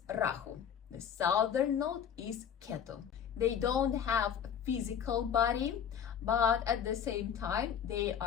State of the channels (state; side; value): quieter; right; 8.4 dB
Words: Rahu, the southern node is Ketu. They don't have a physical body, but at the same time they